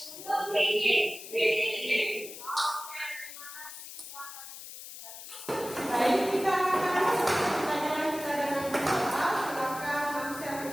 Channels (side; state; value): left; noise; hiss, 12 dB below the sound